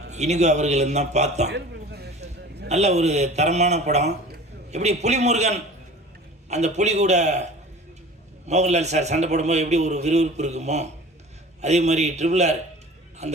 இனிகோ அவர்களும் தான் பார்த்தோம். நல்ல ஒரு தரமான படம். எப்படி புலிமுருகன் அந்த புலி கூட மோகன்லால் சார் சண்டை போடும்போது எப்படி ஒரு விறுவிறுப்பு இருக்குமோ, அதே மாதிரி ட்ரிபிள் ஆர்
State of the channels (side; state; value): both; normal; correlation 0.41